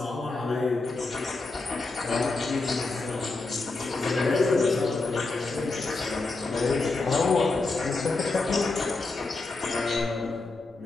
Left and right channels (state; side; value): quieter; right; 3.5 dB